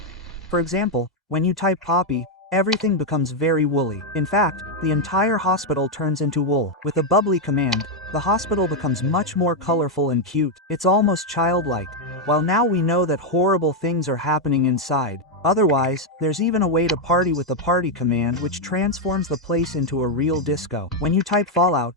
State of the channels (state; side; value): normal; both; correlation 0.01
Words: For example, when you type Poppy, everything becomes very woolly. In fact, the entire hospital turns into wool. With a bubbly command, the hospital becomes much more colorful and cute. It's almost childlike. While now we know that horrible things are happening inside. Otherwise, there's even a way to party with the party command, which transforms the place into a real disco. When you type Fallout,